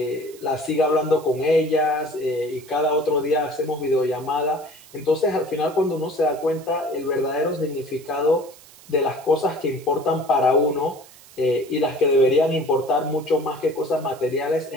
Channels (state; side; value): noise; right; hiss, 22 dB below the sound